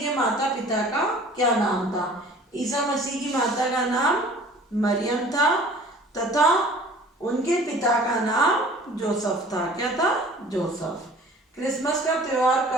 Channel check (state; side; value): normal; both; correlation 0.48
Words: माता पिता का क्या नाम था? ईसा मसीह की माता का नाम मरियम था तथा उनके पिता का नाम जोसेफ था। क्या था? जोसेफ। क्रिसमस का त्योहार